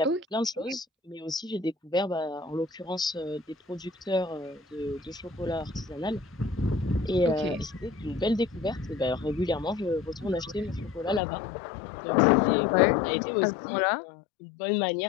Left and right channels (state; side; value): drops out; right; at 11.2 s